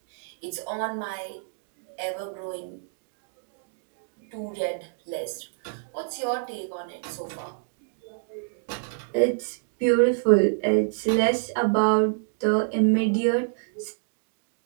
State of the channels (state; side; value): silent; left; digital silence